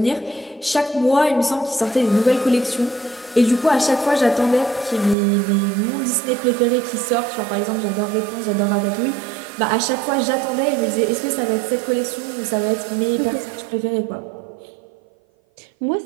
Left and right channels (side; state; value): left; drops out; at 5.2 s